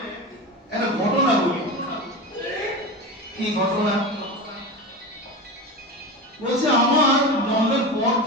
একটা ঘটনা বলি। কি ঘটনা? বলছে আমার জন্মের পর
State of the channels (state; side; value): normal; both; correlation 0.25